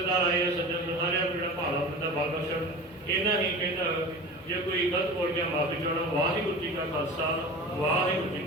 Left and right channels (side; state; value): both; normal; correlation 0.34